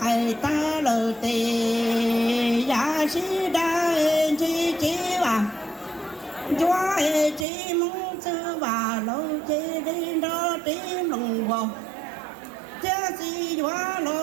cày ta lờ tề giá sĩ đa chi chi và chúa hê chi mong sư và lâu chi đi đó tím lòng vào cha si quá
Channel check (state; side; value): drops out; left; at 7.5 s